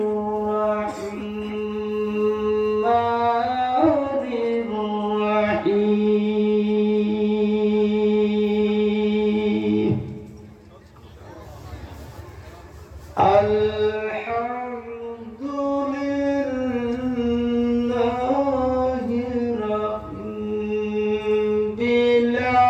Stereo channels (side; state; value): both; identical; correlation 1.00